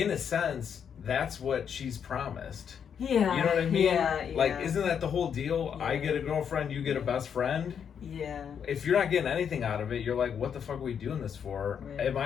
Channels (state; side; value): quieter; right; 7.7 dB